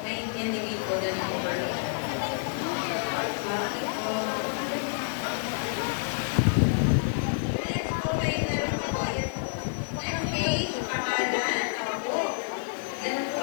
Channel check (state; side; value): silent; right; 59 dB below the other